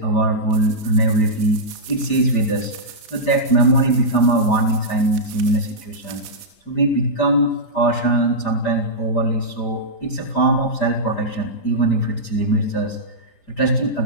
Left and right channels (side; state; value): right; late; 4.9 ms